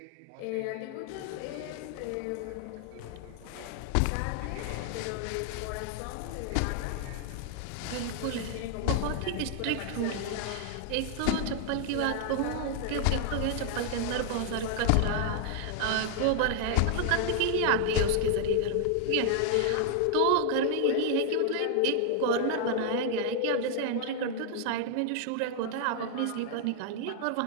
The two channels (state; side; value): different; both; correlation 0.00